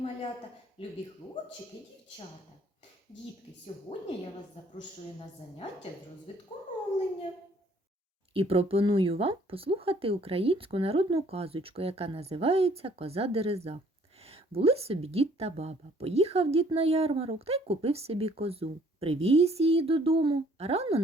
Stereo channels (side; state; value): both; normal; correlation 0.60